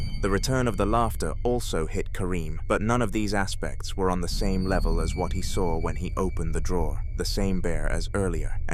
The return of the laughter also hit Kareem, but none of these aspects were on the same level as what he saw when he opened the drawer, the same bear as earlier,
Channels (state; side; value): identical; both; correlation 1.00